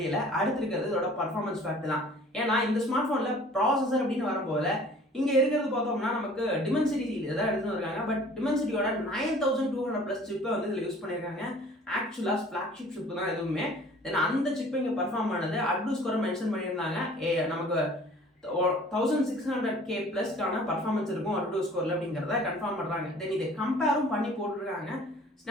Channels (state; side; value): normal; both; correlation 0.50